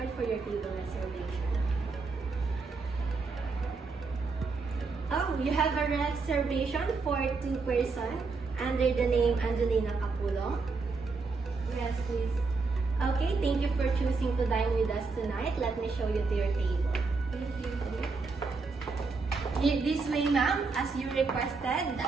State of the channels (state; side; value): quieter; left; 4.3 dB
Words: for your table reservation. Oh, you have a reservation for 2 persons under the name Angelina Capulong? Yes, please. Okay, thank you for choosing to dine with us tonight. Let me show you to your table. Thank you. This way, ma'am, as you requested,